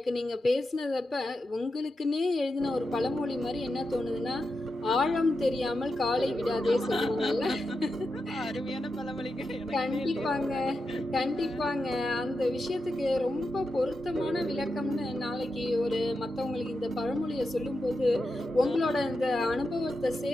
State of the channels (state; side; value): normal; both; correlation 0.88